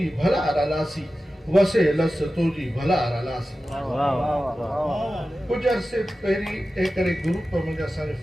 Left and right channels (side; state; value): both; normal; correlation 0.94